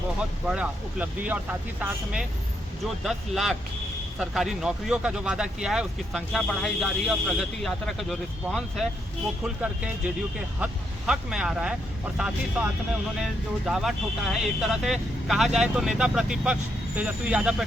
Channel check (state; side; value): normal; both; correlation 0.78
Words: बहुत बड़ा उपलब्धि है। और साथ ही साथ में जो 10 लाख सरकारी नौकरियों का जो वादा किया है उसकी संख्या बढ़ाई जा रही है। और प्रगति यात्रा का जो रिस्पांस है वो खुल करके जेडीयू के हक में आ रहा है। और साथ ही साथ में उन्होंने जो दावा ठोका है, एक तरह से कहा जाए तो नेता प्रतिपक्ष तेजस्वी यादव पर